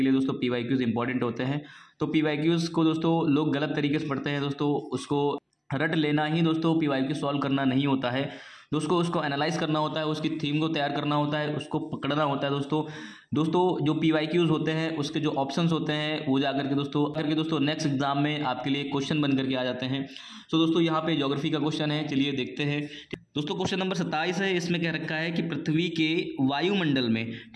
लिए दोस्तों पीवाईक्यूज इंपॉर्टेंट होते हैं, तो पीवाईक्यूज को दोस्तों लोग गलत तरीके से पढ़ते हैं दोस्तों। उसको रट लेना ही दोस्तों पीवाईक्यू सॉल्व करना नहीं होता है दोस्तों, उसको एनालाइज करना होता है, उसकी थीम को तैयार करना होता है, उसको पकड़ना होता है दोस्तों जो पीवाईक्यूज होते हैं उसके जो ऑप्शंस होते हैं वो जाकर के दोस्तों नेक्स्ट एग्जाम में आपके लिए क्वेश्चन बन करके आ जाते हैं। सो दोस्तों यहाँ पे ज्योग्राफी का क्वेश्चन है, चलिए देखते हैं। दोस्तों क्वेश्चन नंबर 27 है, इसमें कह रखा है कि पृथ्वी के वायुमंडल में,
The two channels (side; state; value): both; identical; correlation 1.00